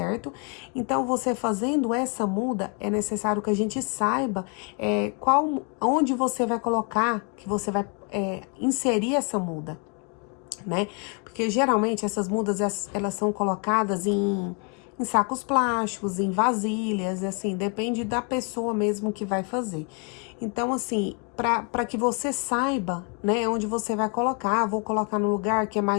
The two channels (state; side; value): quieter; right; 35.6 dB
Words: Então, você fazendo essa muda, é necessário que a gente saiba onde você vai colocar, que você vai inserir essa muda, né? Porque geralmente essas mudas, elas são colocadas em em sacos plásticos, em vasilhas, assim, depende da pessoa mesmo que vai fazer. Então, assim, para que você saiba, né, onde você vai colocar, vou colocar no lugar que é